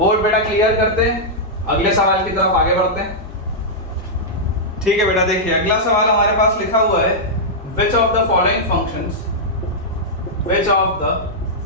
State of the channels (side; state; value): both; normal; correlation -0.08